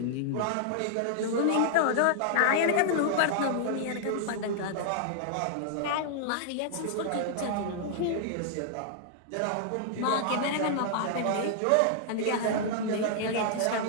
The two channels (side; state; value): both; different; correlation -0.01